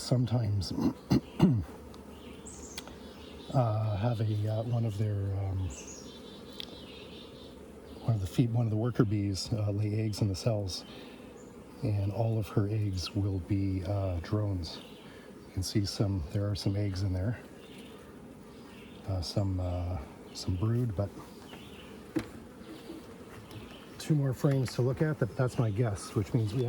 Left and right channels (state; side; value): identical; both; correlation 1.00